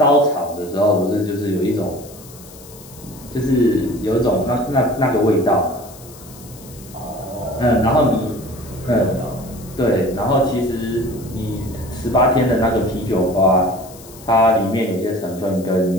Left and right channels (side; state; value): left; noise; hiss, 20 dB below the sound